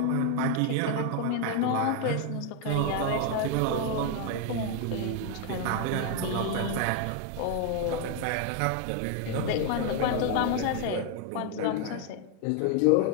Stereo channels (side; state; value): both; different; correlation 0.01